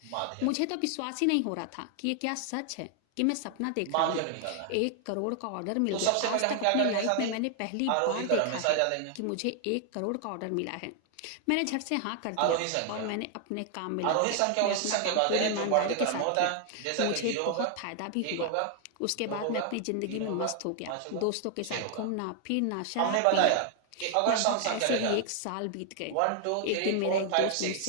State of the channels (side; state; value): both; different; correlation 0.00